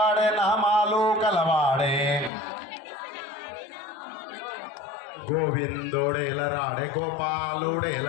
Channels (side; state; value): right; drops out; at 2.3 s